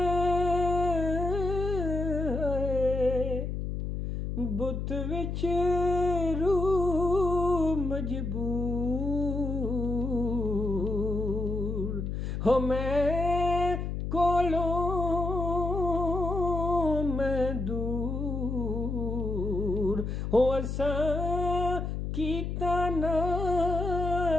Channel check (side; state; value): left; noise; hum, 3 dB below the sound